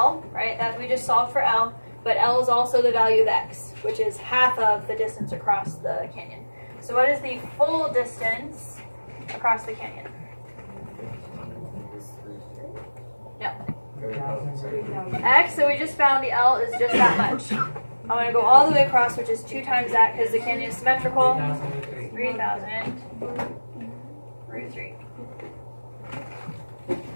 right? That we just solved for L, but L is also the value of X, which is half of the distance across the canyon. So what is the full distance across the canyon? No. X, so we just found the L is just that much. I'm going to go all the way across, which is 2 times that because the canyon is symmetrical. 3,000 root 3.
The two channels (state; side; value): inverted; both; correlation -1.00